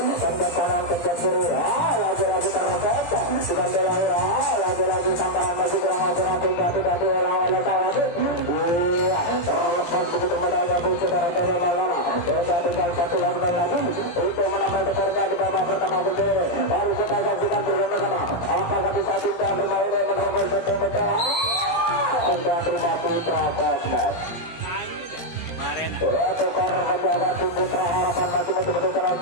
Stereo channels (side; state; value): right; late; 17 ms